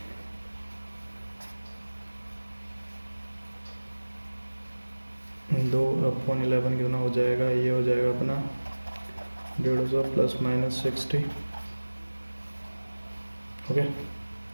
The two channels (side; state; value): both; inverted; correlation -1.00